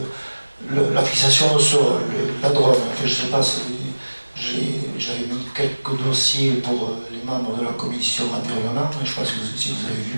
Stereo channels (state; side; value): inverted; both; correlation -1.00